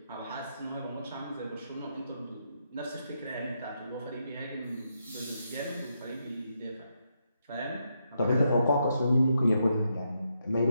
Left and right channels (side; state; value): both; inverted; correlation -0.80